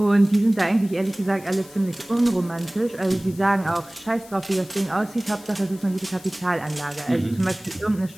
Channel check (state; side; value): noise; left; hiss, 21 dB below the sound